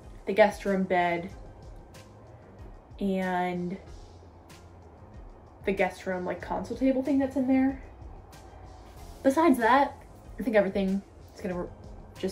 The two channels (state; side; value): identical; both; correlation 1.00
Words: the guest room bed, and the guest room like console table thing that's in there. Besides that, I think everything is gonna